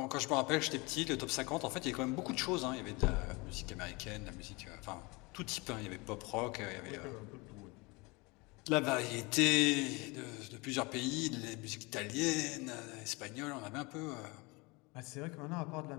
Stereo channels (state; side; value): quieter; right; 26.2 dB